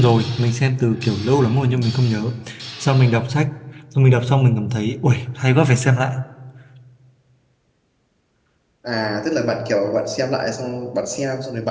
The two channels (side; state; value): both; identical; correlation 1.00